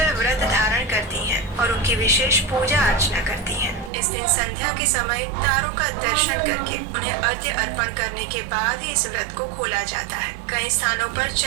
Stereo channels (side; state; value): left; drops out; at 3.9 s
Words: व्रत धारण करती हैं और उनकी विशेष पूजा अर्चना करती हैं। इस दिन संध्या के समय तारों का दर्शन करके उन्हें अर्घ्य अर्पण करने के बाद ही इस व्रत को खोला जाता है। कई स्थानों पर